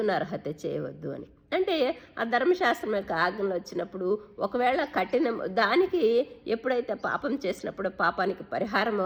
నరహత్య చేయవద్దు అని. అంటే ఆ ధర్మశాస్త్రం యొక్క ఆజ్ఞలు వచ్చినప్పుడు ఒకవేళ దానికి ఎప్పుడైతే పాపం చేసినప్పుడు పాపానికి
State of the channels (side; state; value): both; identical; correlation 1.00